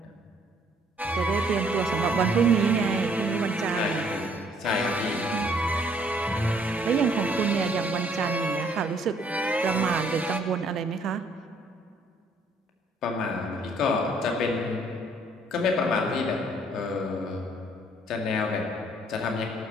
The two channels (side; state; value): both; normal; correlation 0.64